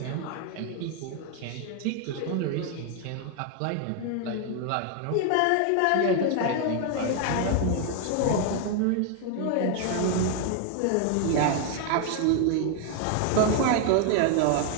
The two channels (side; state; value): both; different; correlation 0.00